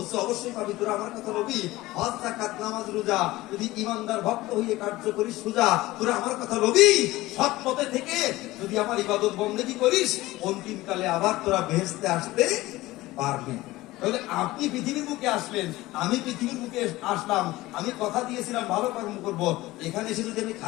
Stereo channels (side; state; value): right; quieter; 18.3 dB